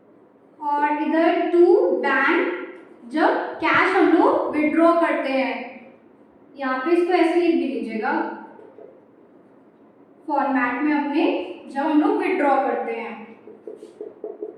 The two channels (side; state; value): both; identical; correlation 1.00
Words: और इधर टू बैंक जब कैश हम लोग विड्रॉ करते हैं। यहाँ पे इसको ऐसे लिख भी लीजिएगा फॉर्मेट में अपने, जब हम लोग विड्रॉ करते हैं।